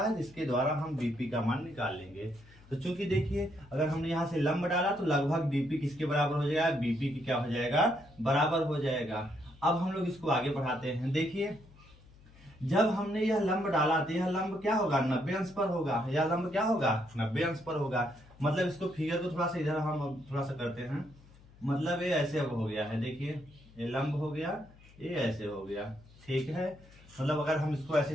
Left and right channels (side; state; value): left; noise; hum, 24 dB below the sound